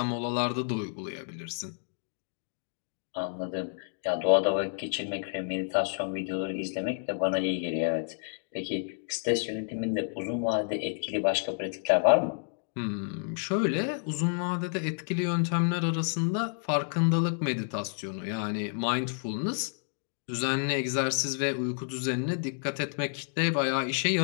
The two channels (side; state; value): right; silent; digital silence